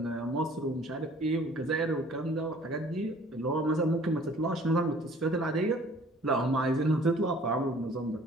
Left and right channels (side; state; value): both; normal; correlation 0.53